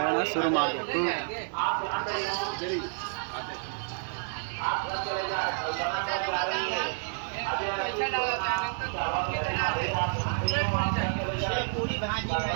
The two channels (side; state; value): left; silent; 58 dB below the other